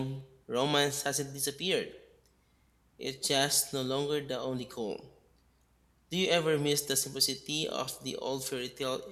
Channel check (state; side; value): identical; both; correlation 1.00